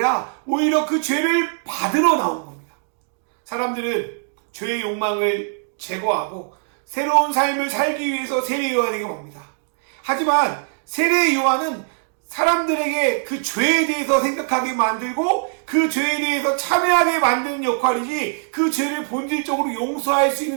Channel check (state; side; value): silent; left; digital silence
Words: 오히려 그 죄를 받으러 나온 겁니다. 사람들은 죄의 욕망을 제거하고 새로운 삶을 살기 위해서 세례 요한에게 옵니다. 하지만 세례 요한은 사람들에게 그 죄에 대해서 생각하게 만들고 그 죄에 대해서 참여하게 만드는 역할이지 그 죄를 본질적으로 용서할 수